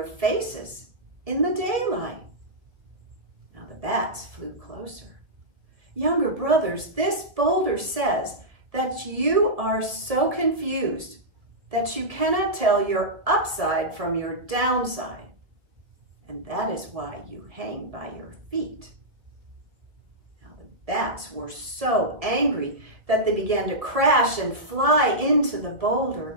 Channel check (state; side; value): late; left; 1.8 ms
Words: faces in the daylight." Now the bats flew closer. "Younger brothers, this boulder says that you are so confused that you cannot tell your upside from your downside, and that is why you hang by your feet." Now the bats were so angry that they began to crash and fly into the